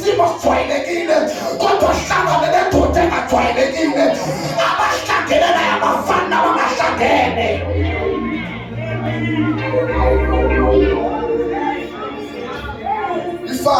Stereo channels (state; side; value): identical; both; correlation 1.00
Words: sijwayelekile kodwa hlangane nendoda engajwayelekile, abahlangene naye abafani nabangahlangene.